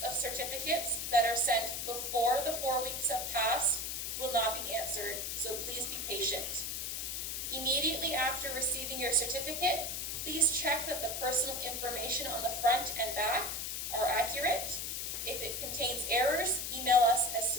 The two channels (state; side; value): noise; left; hiss, 3 dB below the sound